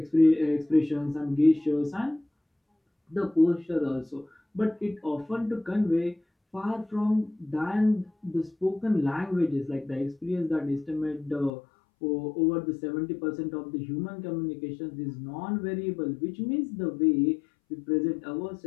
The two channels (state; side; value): drops out; right; at 11.5 s